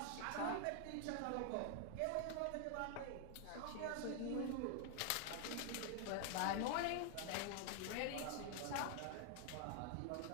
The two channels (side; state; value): both; different; correlation 0.00